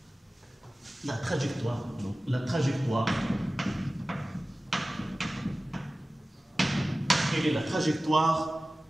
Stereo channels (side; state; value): both; normal; correlation 0.97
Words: la trajectoire, non, la trajectoire, quelle est la trajectoire